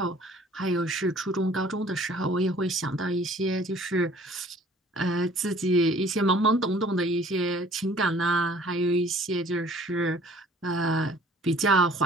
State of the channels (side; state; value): both; normal; correlation 0.53